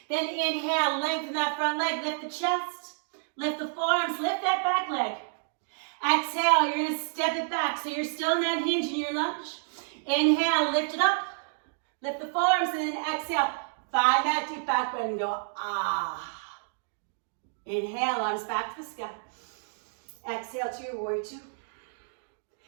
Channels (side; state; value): left; silent; digital silence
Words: Then inhale, lengthen that front leg, lift the chest, lift the forearms, lift that back leg. Exhale, you're gonna step it back so you're still in that hinge in your lunge. Inhale, lift it up, lift the forearms, and then exhale, find that deep back bend and go, ah. Inhale, arms back to the sky. Exhale to your warrior two.